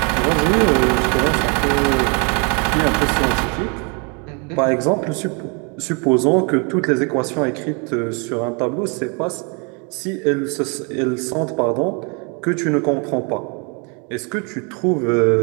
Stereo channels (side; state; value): left; quieter; 34.3 dB